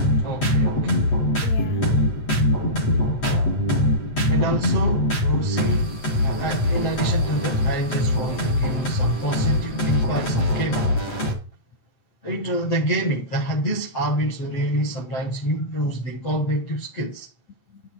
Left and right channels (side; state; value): right; late; 8.1 ms